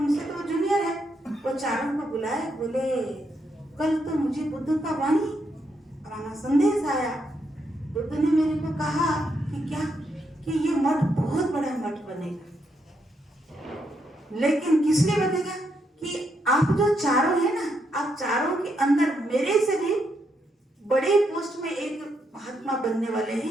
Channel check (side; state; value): both; normal; correlation 0.79